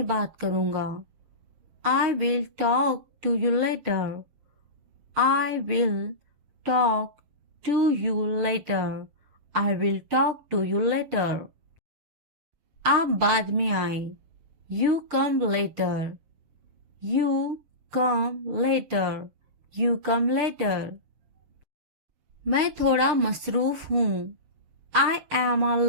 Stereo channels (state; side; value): late; left; 6.4 ms